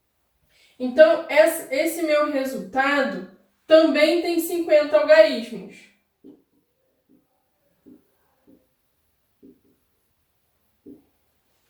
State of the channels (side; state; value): both; identical; correlation 1.00